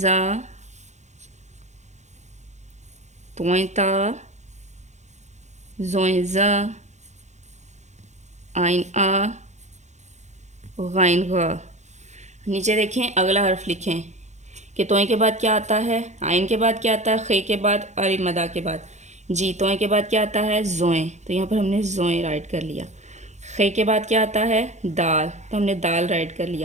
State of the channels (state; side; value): late; left; 0.33 ms